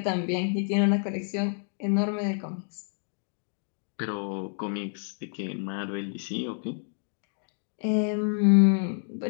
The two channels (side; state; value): right; silent; 59 dB below the other